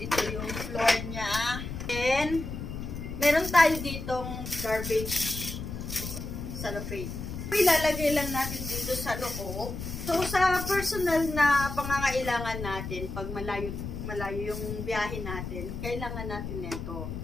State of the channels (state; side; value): noise; left; rumble, 7 dB below the sound